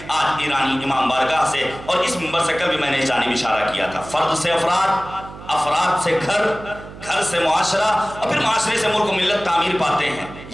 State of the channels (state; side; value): noise; right; hum, 15 dB below the sound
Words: آج ایرانی امام بارگاہ سے، اور اس منبر سے کل بھی میں نے اس جانب اشارہ کیا تھا، فرد سے افراد، افراد سے گھر، گھر سے معاشرہ، اور پھر معاشرے سے ملک و ملت تعمیر پاتے ہیں۔